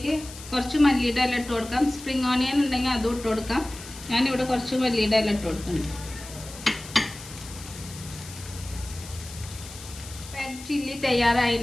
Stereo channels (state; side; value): noise; left; hiss, 15 dB below the sound